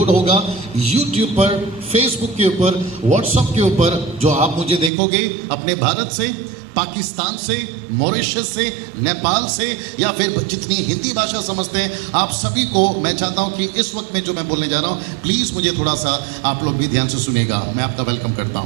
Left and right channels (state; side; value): drops out; left; at 4.9 s